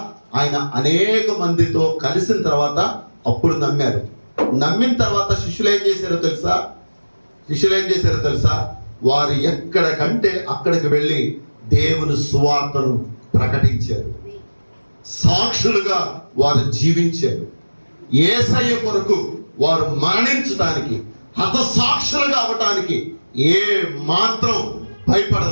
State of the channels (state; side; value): inverted; both; correlation -1.00